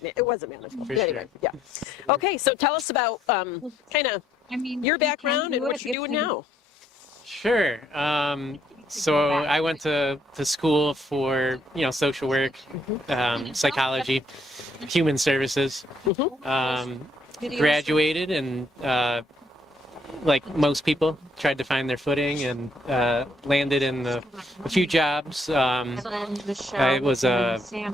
it wasn't manageable. For Anyway, sure. yeah. Okay, so tell us about kind of your background and what you're doing now. Sure. So I went to school for, social work, psychology, human services. Graduated and, like most people, tried to find their footing and landed in a few jobs. I was a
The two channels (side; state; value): both; normal; correlation 0.70